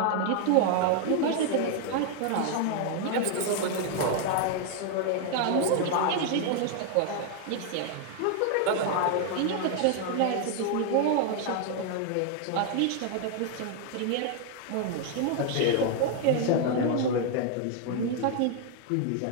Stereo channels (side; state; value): both; different; correlation 0.00